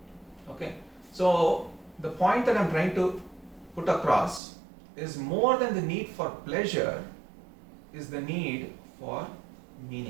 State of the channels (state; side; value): drops out; left; at 4.4 s